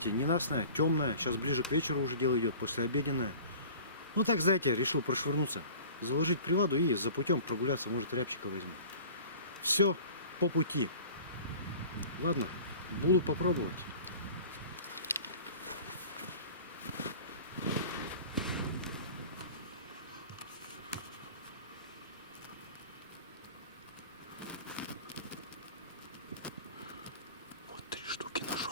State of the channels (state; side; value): inverted; both; correlation -0.43